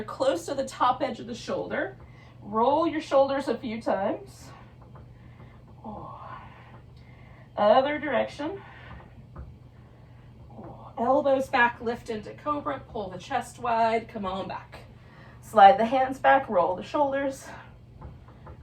close to the top edge of the shoulder, roll your shoulders a few times, other direction, elbows back, lift into cobra, pull the chest wide, come on back, slide the hands back, roll the shoulders,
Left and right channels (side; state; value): both; identical; correlation 1.00